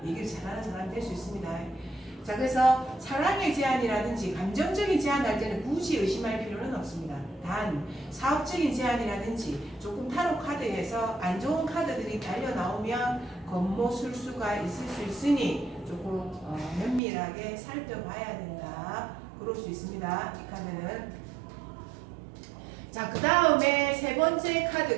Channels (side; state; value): left; drops out; at 17.0 s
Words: 얘기를 잘하는 사람이 될 수 있습니다. 자 그래서 사랑의 제안이라든지 감정적인 제안할 때는 굳이 의심할 필요는 없습니다. 단 사업적인 제안이라든지 조금 타로 카드에서 안 좋은 카드들이 달려 나오면 겉모술수가 있을 수 있으니 조금 면밀하게 살펴봐야 된다. 그럴 수 있습니다. 이 카드는. 자, 그 다음에 세 번째